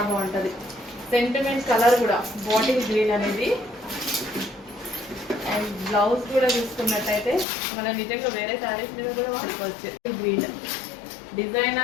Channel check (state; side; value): drops out; right; at 7.5 s